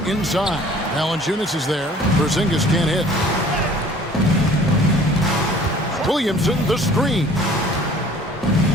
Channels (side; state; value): both; normal; correlation 0.51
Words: inside. Valanciunas is there. Porzingis can't hit. Williamson, the screen.